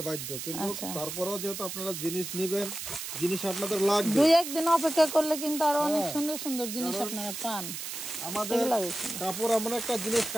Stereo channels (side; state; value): right; noise; hiss, 7 dB below the sound